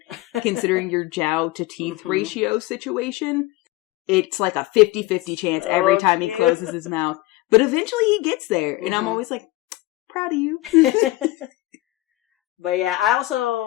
considering your jowl to teeth ratio situation. It's like a 50-50 chance every time he closes his mouth. But eventually he gets there. And I'm always like, proud of you. But yeah, I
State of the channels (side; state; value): right; quieter; 18.7 dB